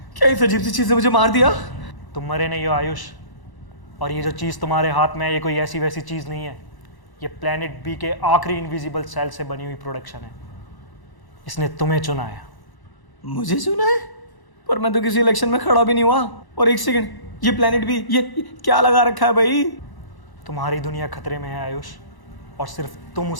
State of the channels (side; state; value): right; late; 1.0 ms